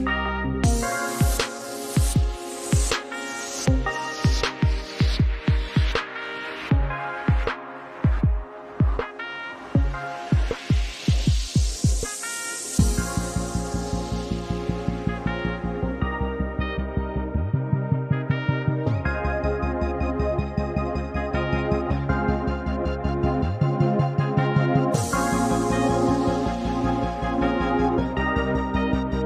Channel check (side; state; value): both; identical; correlation 1.00